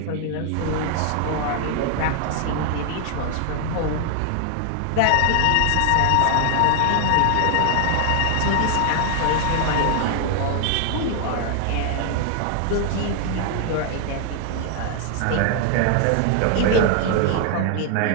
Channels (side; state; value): both; different; correlation 0.00